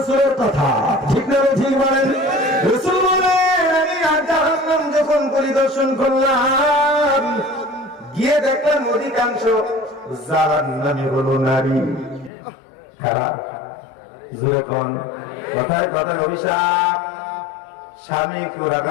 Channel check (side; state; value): right; drops out; at 12.3 s